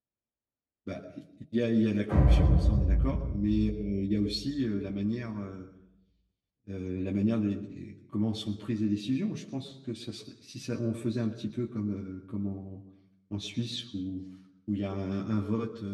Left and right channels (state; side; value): identical; both; correlation 1.00